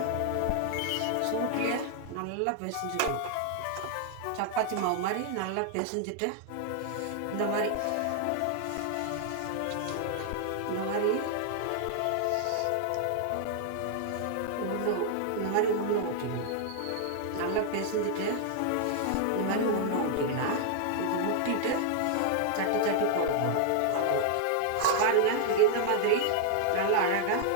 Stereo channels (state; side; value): different; both; correlation 0.00